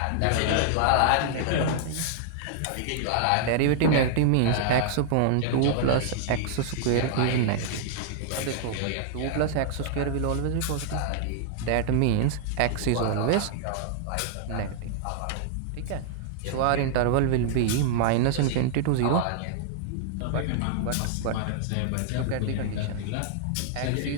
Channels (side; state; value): both; different; correlation -0.01